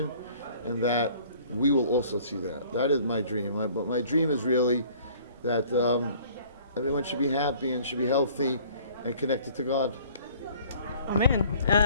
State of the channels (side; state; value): both; inverted; correlation -0.53